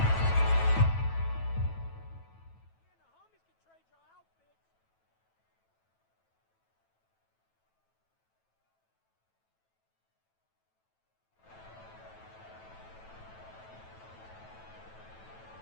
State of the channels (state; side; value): late; right; 9.1 ms